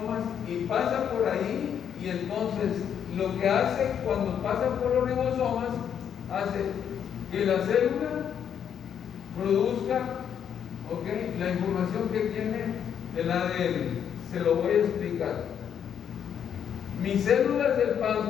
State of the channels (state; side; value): quieter; right; 8.5 dB